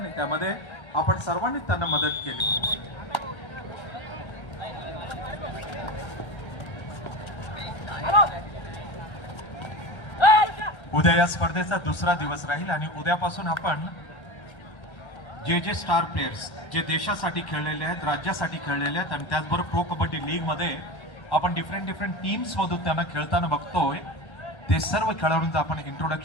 त्यामध्ये आपण सर्वांनी त्यांना मदत केली. उद्या या स्पर्धेचा दुसरा दिवस राहील आणि उद्यापासून आपण जे स्टार प्लेयर्स जे देशासाठी खेळलेले आहेत, राज्यासाठी खेळलेले आहेत आणि त्याचबरोबर प्रो कबड्डी लीग मध्ये आपण डिफरंट टीम्स मधून त्यांना खेळताना बघतोय, ते सर्व खेळाडूंचं आपण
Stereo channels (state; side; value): late; right; 1.3 ms